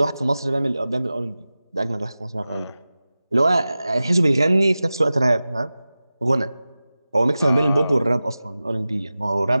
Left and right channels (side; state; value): both; inverted; correlation -0.96